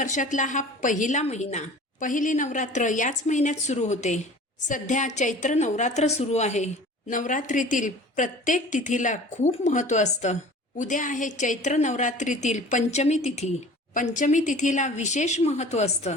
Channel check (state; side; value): normal; both; correlation 0.43